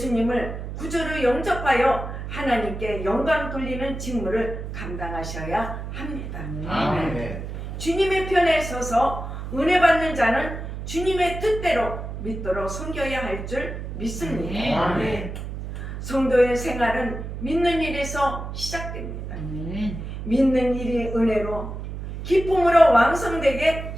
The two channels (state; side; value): noise; right; hum, 7 dB below the sound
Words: 구주로 영접하여 하나님께 영광 돌리는 직무를 감당하셔야 합니다. 아멘. 주님의 편에 서서 은혜 받는 자는 주님의 뜻대로 믿도록 섬겨야 할 줄 믿습니다. 아멘. 성도의 생활은 믿는 일에서 시작됩니다. 믿는 일이 은혜로 기쁨으로 왕성되게